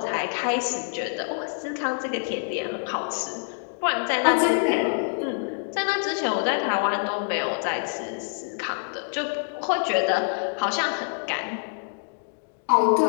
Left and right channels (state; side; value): silent; right; digital silence